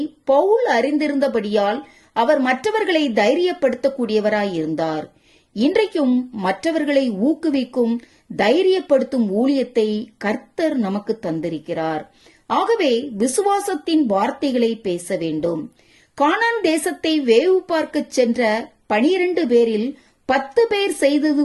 பவுல் அறிந்திருந்தபடியால் அவர் மற்றவர்களை தைரியப்படுத்தக்கூடியவராயிருந்தார். இன்றைக்கும் மற்றவர்களை ஊக்குவிக்கும் தைரியப்படுத்தும் ஊழியத்தை கர்த்தர் நமக்கு தந்திருக்கிறார். ஆகவே விசுவாசத்தின் வார்த்தைகளை பேச வேண்டும். கானான் தேசத்தை வேவு பார்க்க சென்ற 12 பேரில் 10 பேர் செய்தது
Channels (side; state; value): both; identical; correlation 1.00